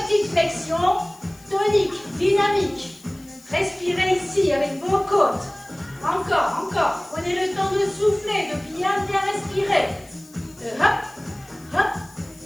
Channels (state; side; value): noise; left; hiss, 24 dB below the sound